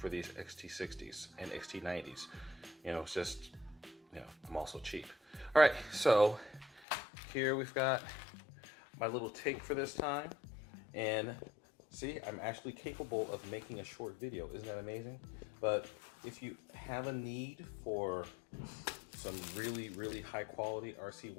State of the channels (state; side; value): drops out; right; at 6.9 s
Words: these XT60s and XT90s. You know, it's just, you know, I'm also cheap. All right, so here we've got my little take for this time, and see, I'm actually capable of making a short video. Isn't that amazing? But if you have a need for some really, really high quality RC